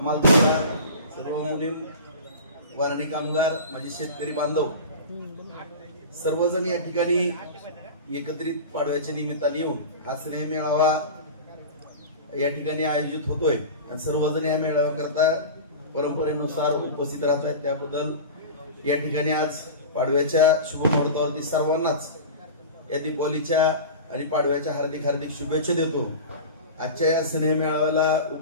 सर्व मुलीम, वारणी कामगार, माझे शेतकरी बांधव सर्वजण या ठिकाणी एकत्रित पाडव्याच्या निमित्ताने येऊन हा स्नेह मेळावा या ठिकाणी आयोजित होतोय आणि सर्वजण या मेळाव्याकरता परंपरेनुसार उपस्थित राहत आहेत। त्याबद्दल या ठिकाणी आज पाडव्याच्या शुभ मुहूर्तावरती सर्वांनाच या दीपावलीच्या आणि पाडव्याच्या हार्दिक हार्दिक शुभेच्छा देतो। आजच्या या स्नेह मेळाव्याला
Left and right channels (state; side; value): inverted; both; correlation -0.32